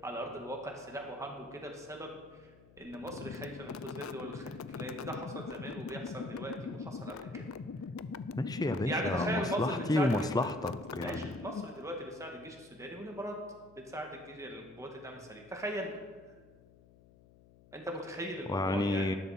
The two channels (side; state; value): left; noise; hum, 24 dB below the sound